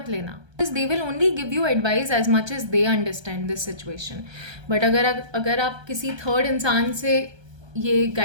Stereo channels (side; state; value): left; late; 1.3 ms